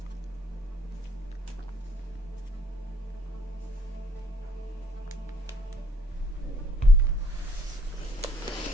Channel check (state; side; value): normal; both; correlation 0.63